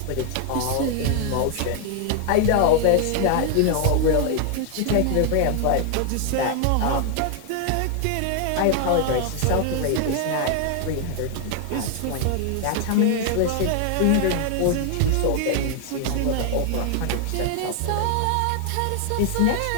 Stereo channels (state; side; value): different; both; correlation 0.00